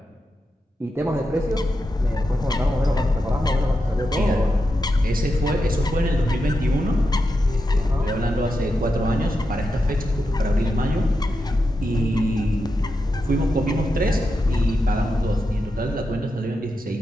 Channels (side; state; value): both; normal; correlation 0.87